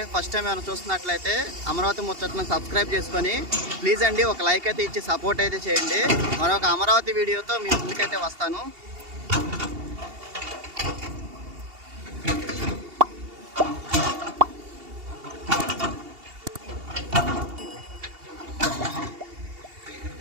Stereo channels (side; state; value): left; late; 2.8 ms